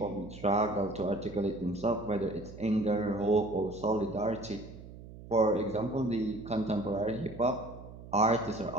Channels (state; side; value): noise; right; hum, 15 dB below the sound